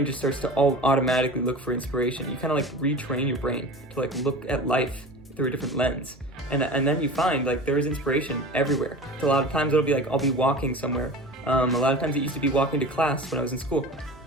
just starts to automatically look for inspiration. You kind of like retrain your brain to like look at life through a different lens. And then you find like there is inspiration everywhere. So a lot of times it'll be like, I'll be walking somewhere. A lot of times it used to be walking to class when I was in school.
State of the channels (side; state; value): both; normal; correlation 0.35